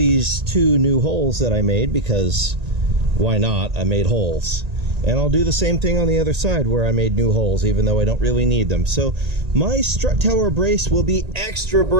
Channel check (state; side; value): late; left; 1.8 ms